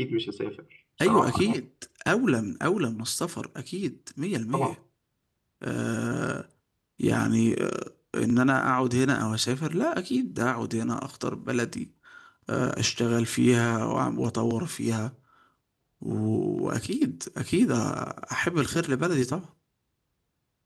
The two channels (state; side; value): identical; both; correlation 1.00